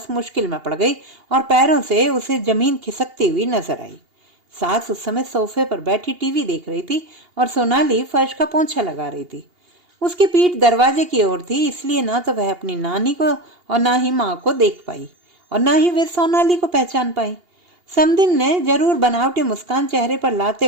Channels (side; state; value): left; late; 2.8 ms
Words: मुश्किल में पड़ गई और पैरों से उसे जमीन खिसकती हुई नजर आई। सास उस समय सोफे पर बैठी टीवी देख रही थी और सोनाली फर्श का पोंछा लगा रही थी। उसकी पीठ दरवाजे की ओर थी, इसलिए ना तो वह अपनी नानी को और ना ही माँ को देख पाई और ना ही वे सोनाली को पहचान पाई। समदिन ने जरूर बनावटी मुस्कान चेहरे पर लाते